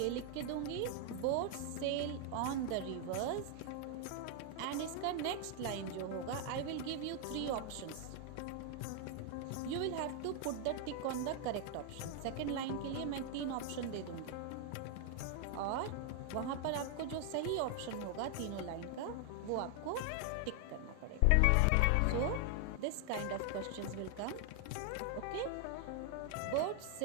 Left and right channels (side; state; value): both; different; correlation 0.00